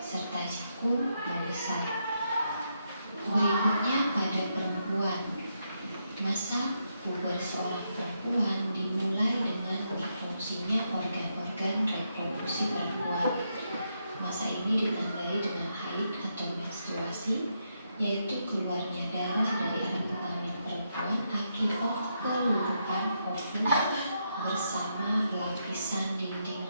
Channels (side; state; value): both; inverted; correlation -0.81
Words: jagung membesar. Berikutnya pada perempuan. Masa puber seorang perempuan dimulai dengan berfungsinya organ-organ reproduksi perempuan. Masa ini ditandai dengan haid atau menstruasi, yaitu keluarnya darah dari alat kelamin perempuan akibat peluluhan ovum bersama lapisan